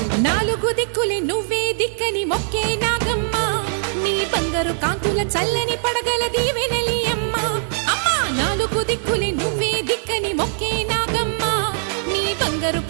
నాలుగు దిక్కులే నువ్వే దిక్కని మొక్కే నాగమ్మ నీ బంగారు కాంతుల చల్లని పడగల దీవెనలి అమ్మ అమ్మా నాలుగు దిక్కులే నువ్వే దిక్కని మొక్కే నాగమ్మ నీ బంగారు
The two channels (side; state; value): left; silent; digital silence